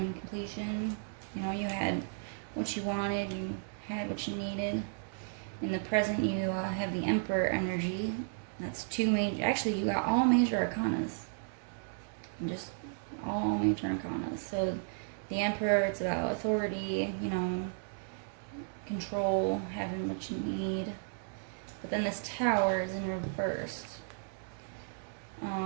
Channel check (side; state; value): left; silent; digital silence